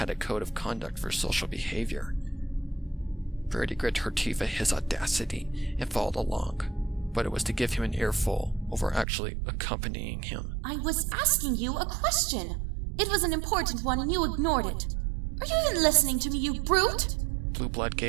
a code of conduct for social behavior. Rarity grit her teeth at his audacity and followed along, but it was to give him an earful over actually accompanying him. I was asking you a question. It was an important one and you ignored it. Are you even listening to me, you brute? Blueblood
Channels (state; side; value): drops out; left; at 9.1 s